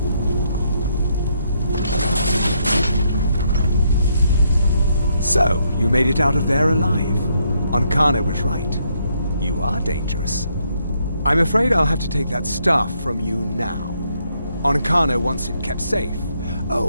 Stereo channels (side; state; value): both; inverted; correlation -0.74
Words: So, you made it out of there alive. Ancana was right. You are dangerous. I'm afraid I'll have to take that staff from you now. Ancana wants it kept safe.